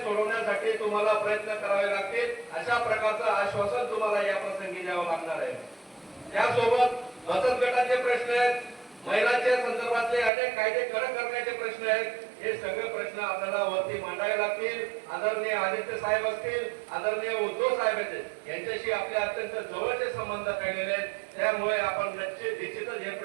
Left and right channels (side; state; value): left; drops out; at 10.3 s